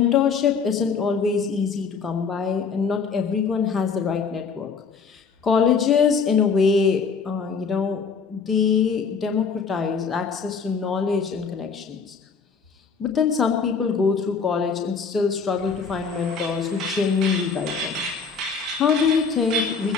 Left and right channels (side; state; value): right; quieter; 5.5 dB